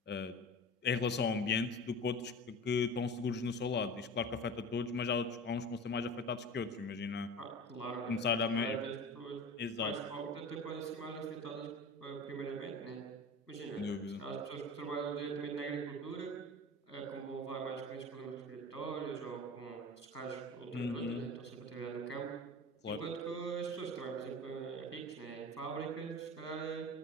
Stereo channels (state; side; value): normal; both; correlation 0.34